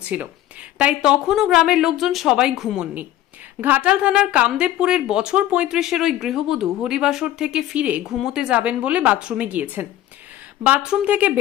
তাই তখনও গ্রামের লোকজন সবাই ঘুমননি। ঘাটাল থানার কামদেবপুরের বছর 35-এর ওই গৃহবধূ হরিবাসর থেকে ফিরে ঘুমোতে যাবেন বলে বাথরুমে গিয়েছেন। বাথরুম থেকে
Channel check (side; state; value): right; quieter; 13.3 dB